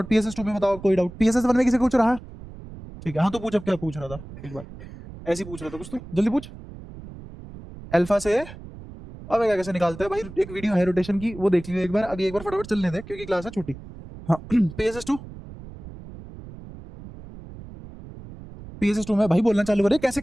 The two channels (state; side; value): noise; right; rumble, 15 dB below the sound